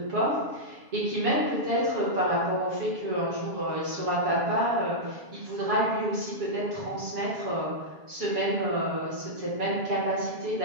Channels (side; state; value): left; late; 7.1 ms